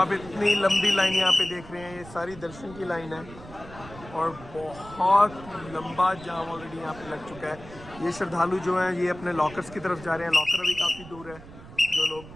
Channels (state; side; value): noise; right; rumble, 17 dB below the sound